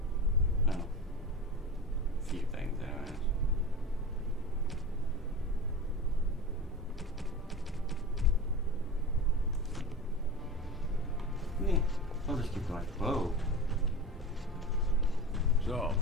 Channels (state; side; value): normal; both; correlation 0.30